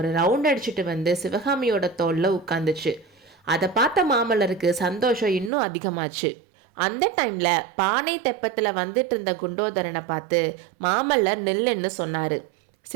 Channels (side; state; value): left; drops out; at 5.5 s